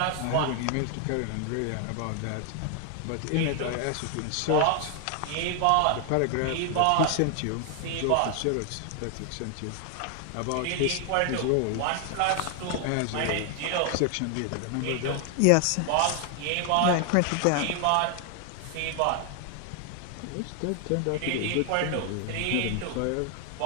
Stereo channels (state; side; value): different; both; correlation 0.00